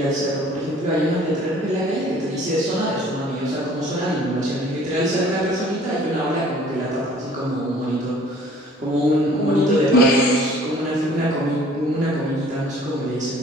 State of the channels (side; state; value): both; normal; correlation 0.53